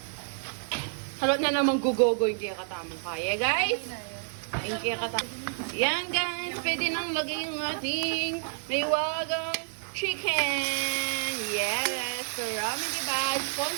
Halot na naman gugogo yung kaya katamang kaya, guys. Yung kaya katamang. Yan, guys. Pwede nang lagay yung ating may wagang chicken. Yes. So, ramen diba?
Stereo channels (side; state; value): left; silent; digital silence